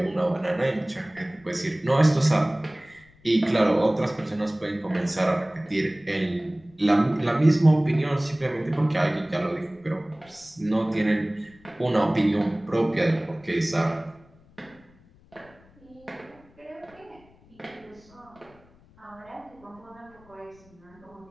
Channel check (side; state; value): left; noise; rumble, 28 dB below the sound